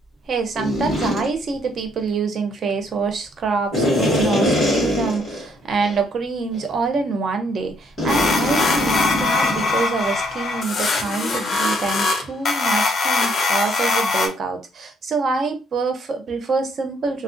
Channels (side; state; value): both; normal; correlation 0.69